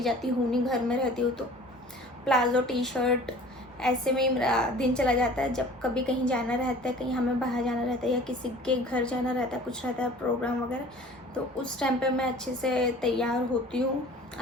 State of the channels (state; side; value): normal; both; correlation 0.46